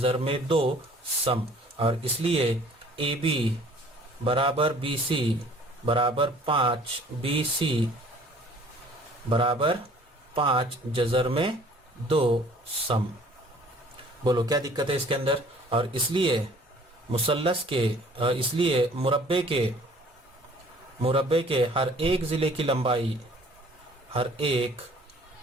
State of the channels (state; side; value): normal; both; correlation 0.53